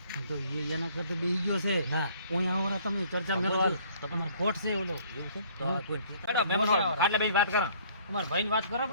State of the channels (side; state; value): both; inverted; correlation -0.58